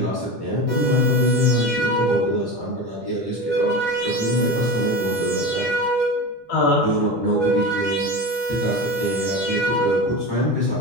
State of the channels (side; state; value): both; normal; correlation 0.27